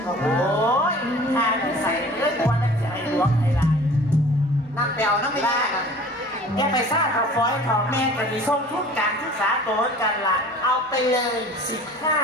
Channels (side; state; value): both; normal; correlation 0.45